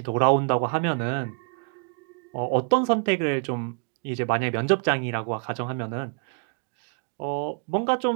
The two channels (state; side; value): quieter; left; 39.4 dB